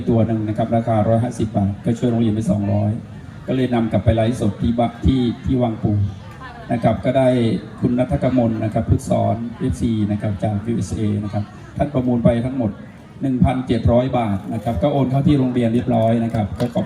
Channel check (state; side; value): identical; both; correlation 1.00